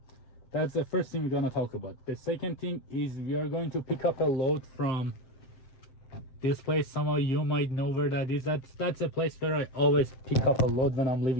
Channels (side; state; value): right; late; 7.7 ms